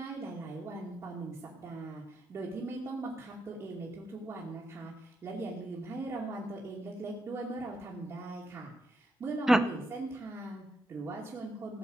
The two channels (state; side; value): normal; both; correlation 0.82